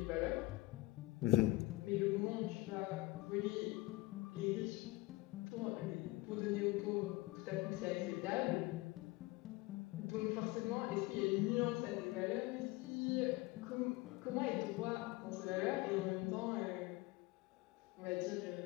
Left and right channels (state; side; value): quieter; right; 20.5 dB